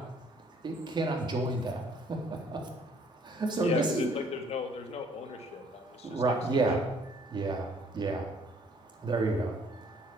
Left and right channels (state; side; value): normal; both; correlation 0.61